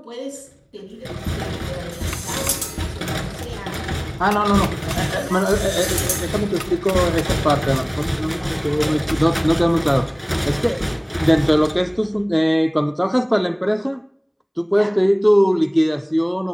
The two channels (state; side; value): identical; both; correlation 1.00